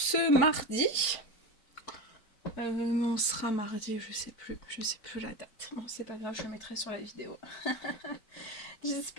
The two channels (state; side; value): late; right; 4.5 ms